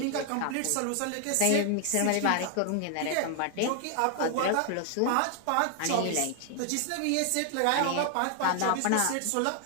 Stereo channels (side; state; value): both; different; correlation 0.00